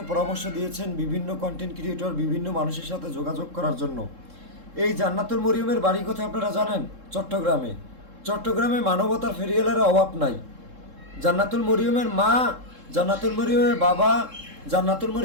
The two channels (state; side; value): late; left; 3.7 ms